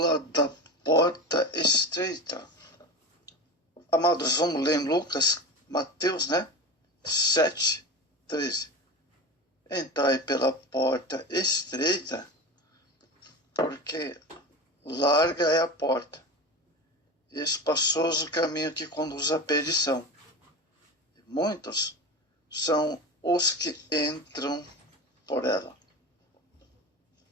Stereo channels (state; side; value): normal; both; correlation 0.28